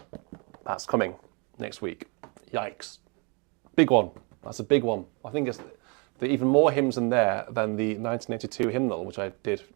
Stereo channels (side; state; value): left; quieter; 32.6 dB